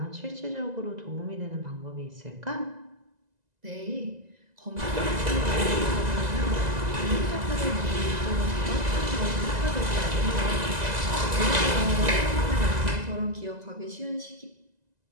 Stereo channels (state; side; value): late; left; 2.0 ms